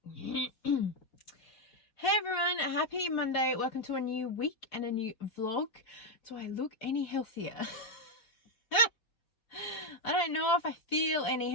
Hey everyone, happy Monday. Welcome to a new week and a new vlog. Do I look any healthier? I don't know if I feel any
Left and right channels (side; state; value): right; late; 4.7 ms